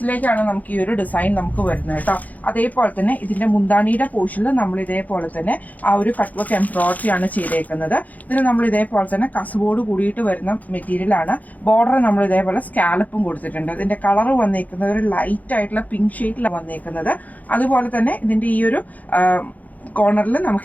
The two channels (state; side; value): late; right; 0.078 ms